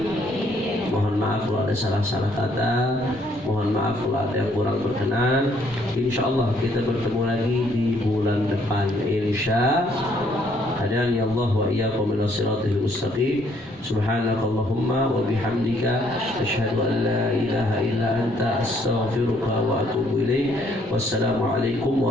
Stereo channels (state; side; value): normal; both; correlation 0.67